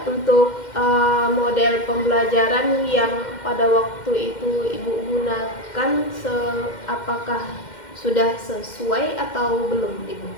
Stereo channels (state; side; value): late; right; 2.1 ms